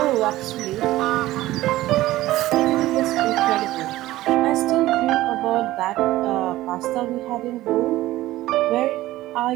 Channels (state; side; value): quieter; left; 16.3 dB